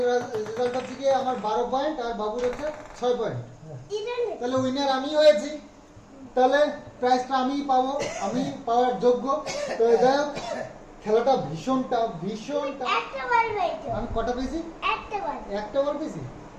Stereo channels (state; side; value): identical; both; correlation 1.00